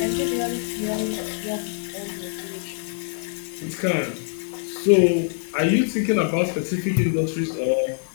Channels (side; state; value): right; silent; 62 dB below the other